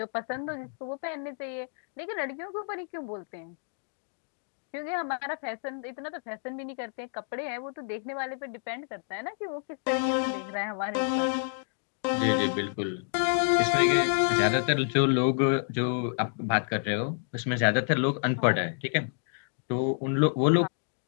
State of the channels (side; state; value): right; silent; digital silence